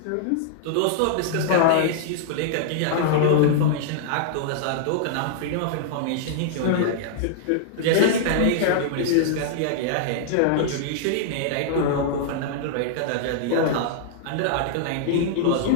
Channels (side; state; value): both; different; correlation -0.01